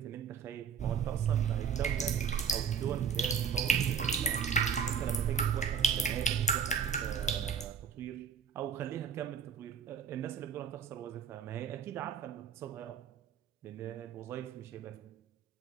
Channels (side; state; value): left; quieter; 6.6 dB